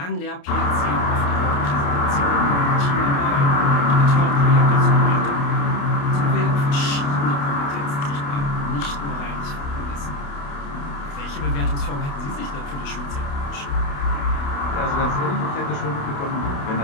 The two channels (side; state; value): right; late; 28 ms